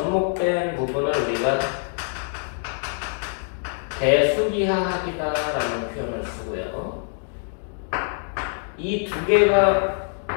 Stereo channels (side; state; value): right; silent; 58 dB below the other